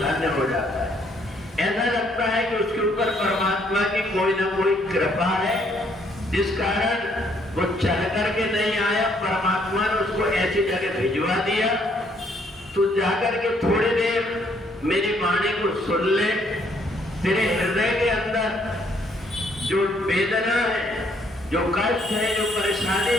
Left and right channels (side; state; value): both; normal; correlation 0.68